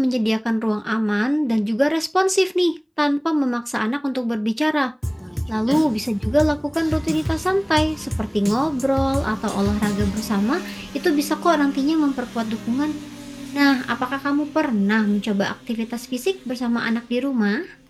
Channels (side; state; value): both; identical; correlation 1.00